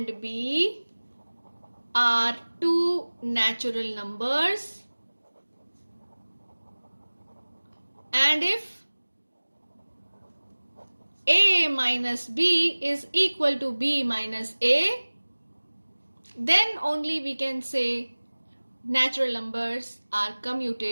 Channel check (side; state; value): both; inverted; correlation -1.00